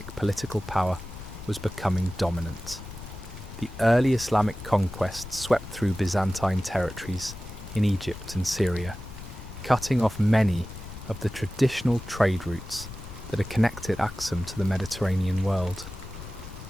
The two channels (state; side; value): noise; left; rumble, 13 dB below the sound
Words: political power was becoming dominant. The early Islamic conquests swept through Byzantine territories in Egypt and Syria, cutting off many of the traditional trade routes that had connected Aksum to the Mediterranean world.